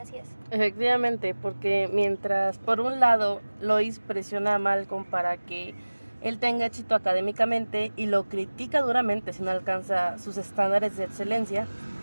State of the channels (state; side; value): inverted; both; correlation -1.00